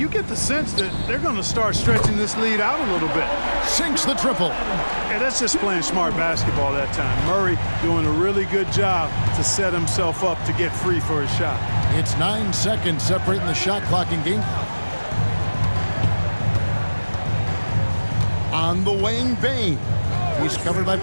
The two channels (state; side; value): inverted; both; correlation -1.00